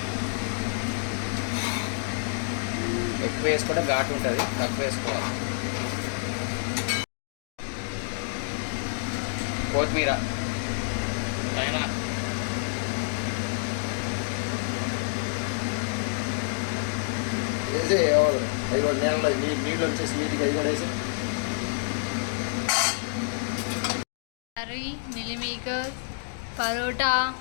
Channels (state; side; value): silent; right; digital silence